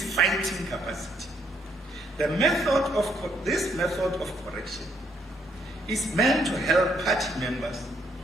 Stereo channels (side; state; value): both; normal; correlation 0.72